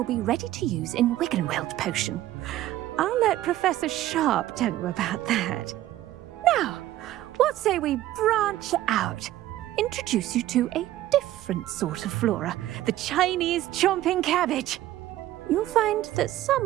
be ready to use in Wiggenweld potion. I'll let Professor Sharp tell you about that. Now, what say we branch out? Introduce you to a different sort of flora, the Chinese chomping cabbage. You'll find that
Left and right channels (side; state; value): left; quieter; 14.3 dB